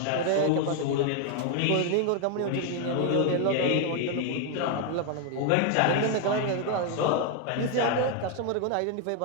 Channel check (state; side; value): different; both; correlation 0.01